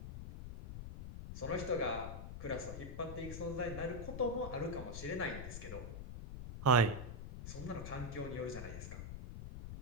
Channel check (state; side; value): noise; left; rumble, 8 dB below the sound